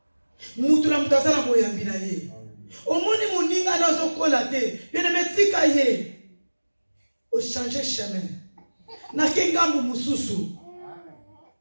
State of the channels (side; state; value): both; inverted; correlation -1.00